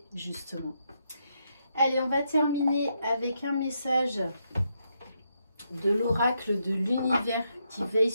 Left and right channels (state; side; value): inverted; both; correlation -0.80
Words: justement. Allez, on va terminer avec un message de l'oracle de l'univers qui veille